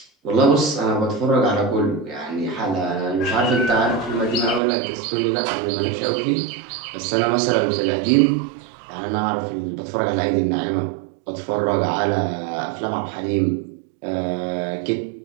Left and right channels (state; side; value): drops out; left; at 4.6 s